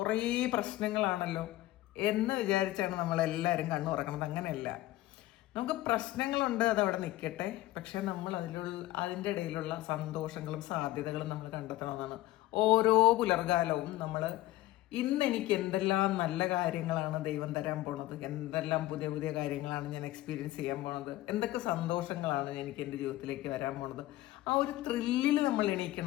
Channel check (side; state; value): right; quieter; 16.6 dB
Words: പ്രശ്നങ്ങളാണല്ലോ എന്ന് വിചാരിച്ചാണ് നമ്മളെല്ലാവരും കണ്ണു തുറക്കണത്. അങ്ങനെയല്ല, നമുക്ക് പ്രശ്നങ്ങളുണ്ട്, അതവിടെ നിൽക്കട്ടെ. പക്ഷെ നമ്മൾ അതിൻ്റെ ഇടയിലുള്ള സന്തോഷങ്ങളും സാധ്യതകളും നമ്മൾ കണ്ടെത്തണമെന്നാണ്. ഓരോ പുലർകാലവും നമ്മൾ ഇന്ന് എനിക്ക് എന്തെല്ലാം നല്ല കാര്യങ്ങളാണ് ദൈവം തരാൻ പോണത്, എന്തെല്ലാം പുതിയ പുതിയ കാര്യങ്ങളാണ് ഞാൻ എക്സ്പീരിയൻസ് ചെയ്യാൻ പോണത്, എന്തൊക്കെ സന്തോഷങ്ങളാണ് എനിക്ക് എൻ്റെ ജീവിതത്തിലേക്ക് വരാൻ പോണത്, ആ ഒരു ത്രില്ലിൽ നമ്മൾ